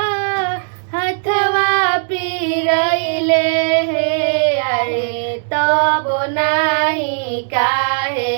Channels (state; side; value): silent; left; digital silence